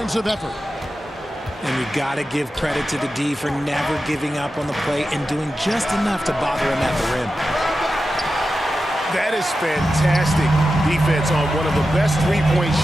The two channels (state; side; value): normal; both; correlation 0.91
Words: effort. And you got to give credit to the D for never giving up on the play and doing just enough to bother him at the rim. That is fantastic defense on one of the best three-point